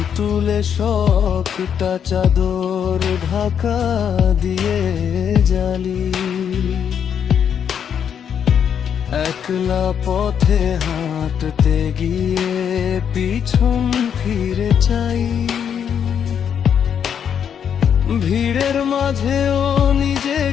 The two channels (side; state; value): right; quieter; 8.1 dB